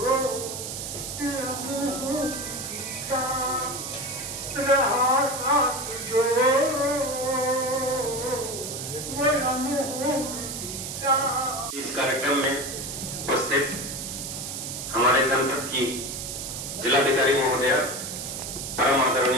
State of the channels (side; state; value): right; noise; hiss, 6 dB below the sound